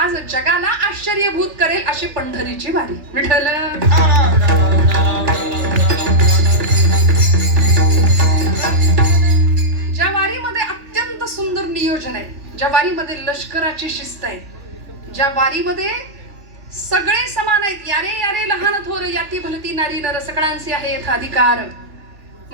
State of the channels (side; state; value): left; late; 3.4 ms